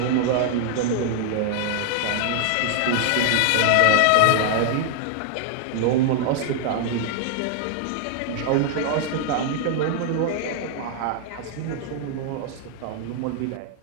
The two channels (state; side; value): different; both; correlation 0.00